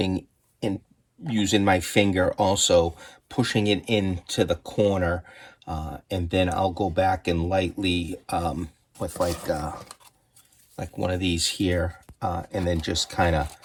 in, using my finger, also pushing it into the corner, and then I'll go back and lightly with like one of these here, and then just kind of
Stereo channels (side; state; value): both; identical; correlation 1.00